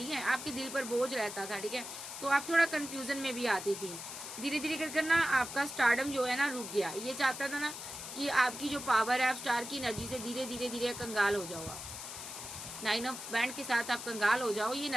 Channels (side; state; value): left; noise; hiss, 9 dB below the sound